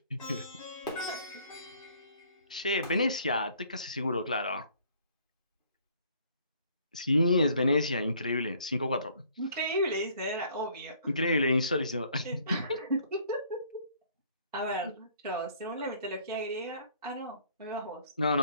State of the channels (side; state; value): both; inverted; correlation -0.59